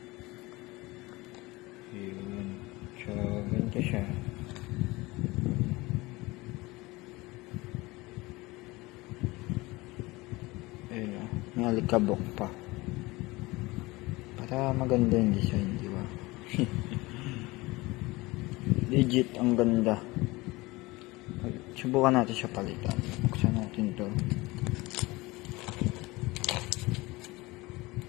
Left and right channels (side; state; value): right; quieter; 21.7 dB